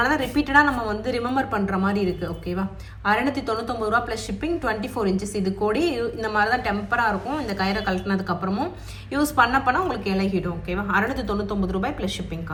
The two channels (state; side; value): identical; both; correlation 1.00